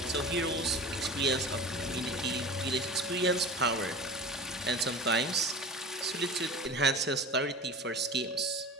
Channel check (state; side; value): normal; both; correlation 0.35